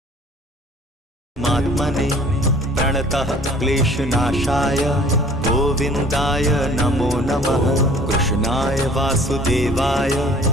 प्रणतः क्लेशनाशाय गोविन्दाय नमो नमः। कृष्णाय वासुदेवाय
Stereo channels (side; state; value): both; normal; correlation 0.52